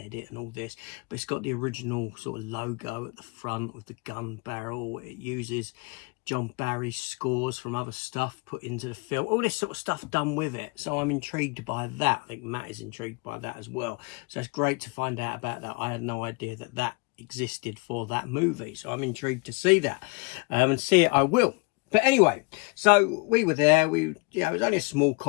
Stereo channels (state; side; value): quieter; right; 28.2 dB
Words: and all this, but it's got the original sort of logo at the front with the gun barrel. It uses John Barry's scores from other stuff put into the film, all this sort of stuff done with it. So I'm intrigued by that. I think Matt is intrigued by that as well. So it's great to find out about that. I had no idea that existed for that movie, so I'm intrigued to see that, and see it I will. But anyway, so we were there. It was only a small